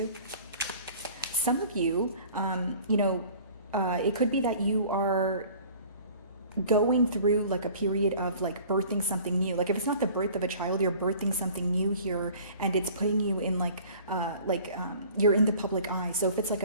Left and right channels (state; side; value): inverted; both; correlation -0.47